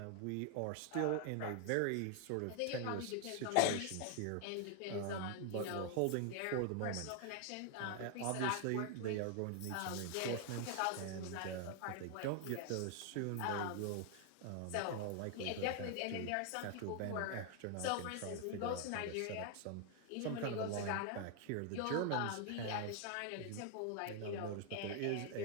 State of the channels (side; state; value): both; different; correlation 0.00